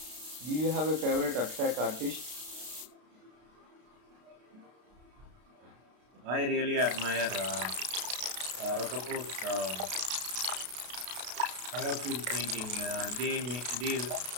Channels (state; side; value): late; left; 32 ms